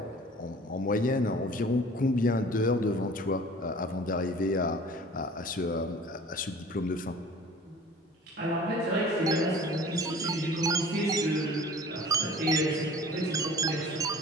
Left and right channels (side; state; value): both; normal; correlation 0.45